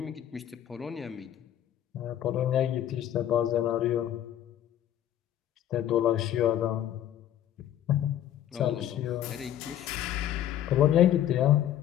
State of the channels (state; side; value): quieter; right; 11.3 dB